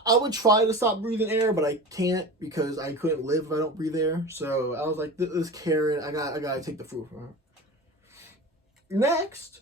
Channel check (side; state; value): both; normal; correlation 0.31